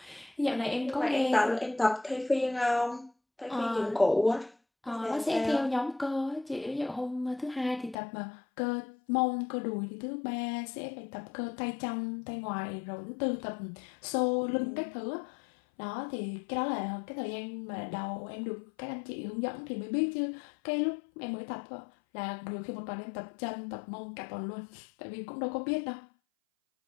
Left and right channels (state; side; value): drops out; right; at 8.0 s